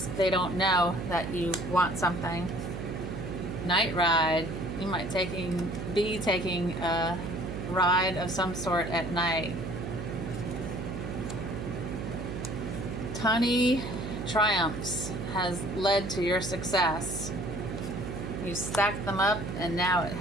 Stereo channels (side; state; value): right; noise; hum, 6 dB below the sound